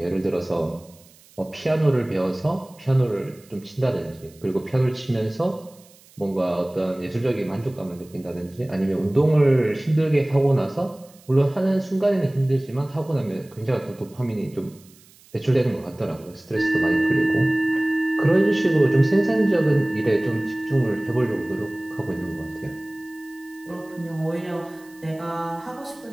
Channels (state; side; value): noise; right; hiss, 27 dB below the sound